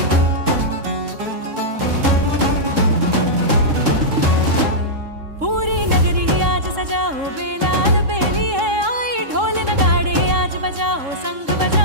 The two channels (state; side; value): late; left; 3.7 ms